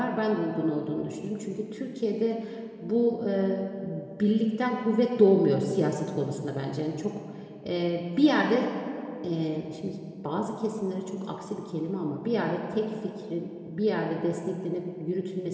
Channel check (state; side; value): identical; both; correlation 1.00